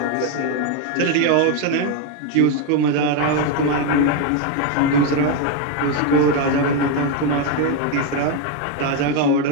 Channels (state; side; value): different; both; correlation 0.02